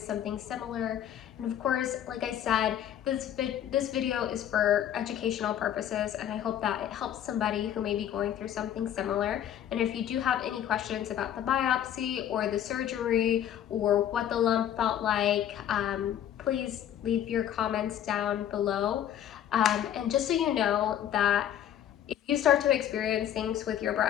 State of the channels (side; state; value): right; quieter; 10.5 dB